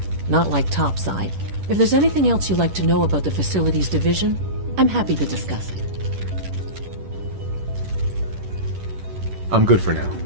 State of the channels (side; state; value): left; late; 10 ms